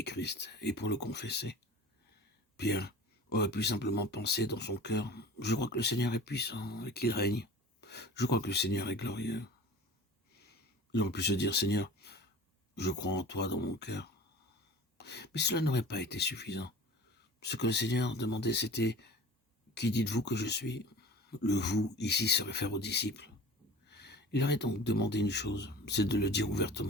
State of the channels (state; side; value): normal; both; correlation 0.40